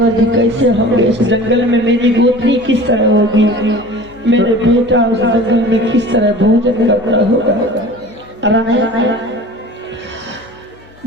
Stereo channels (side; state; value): left; noise; hum, 25 dB below the sound